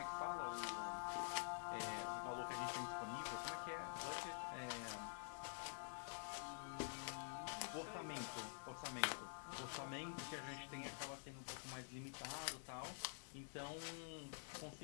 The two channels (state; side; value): silent; right; digital silence